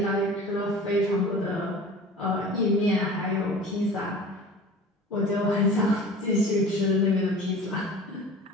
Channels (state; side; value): normal; both; correlation 0.40